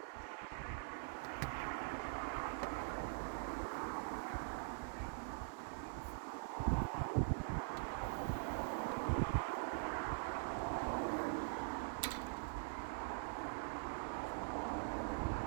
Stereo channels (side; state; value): left; silent; digital silence